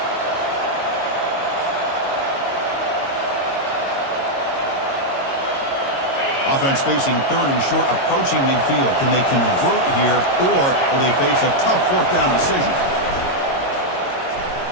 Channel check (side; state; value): right; late; 22 ms